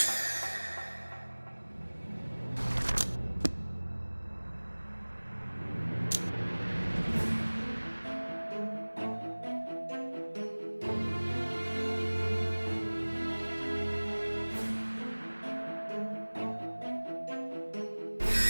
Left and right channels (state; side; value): inverted; both; correlation -1.00